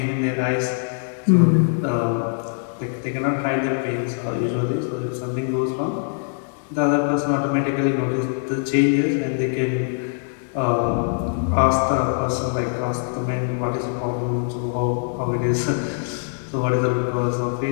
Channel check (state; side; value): silent; right; digital silence